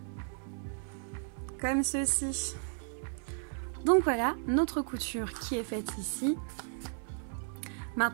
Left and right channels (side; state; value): left; silent; 55 dB below the other